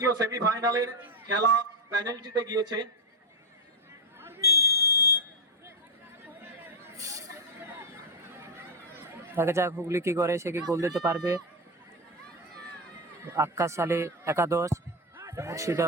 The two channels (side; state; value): both; normal; correlation 0.06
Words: সেমিফাইনালের খেলা পেনাল্টিতে গিয়েছে। দেখা যাক হুগলি কি করে, সে কি গোল দিতে পারবে। আক্কাস আলী একাদশ,